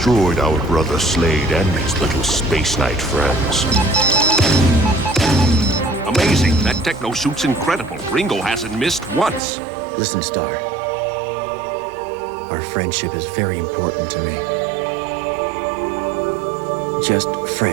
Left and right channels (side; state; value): left; drops out; at 9.4 s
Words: our brother Slade and his little Space Knight friends. Amazing. That techno suit's incredible. Ringo hasn't missed once. Listen, Star. Our friendship is very important to me. Just